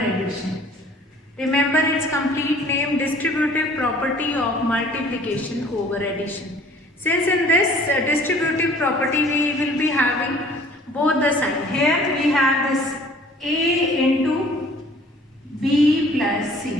Remember its complete name, distributive property of multiplication over addition. Since in this distributive property we will be having both the sign. Here we have this A into B plus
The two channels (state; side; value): normal; both; correlation 0.52